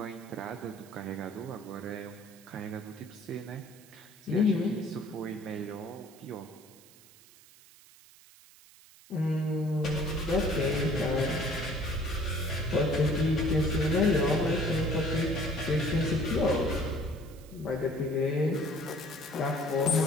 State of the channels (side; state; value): right; noise; hiss, 24 dB below the sound